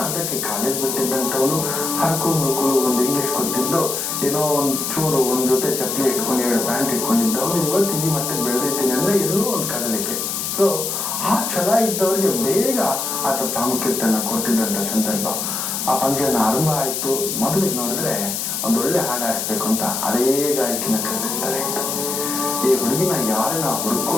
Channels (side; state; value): left; noise; hiss, 2 dB below the sound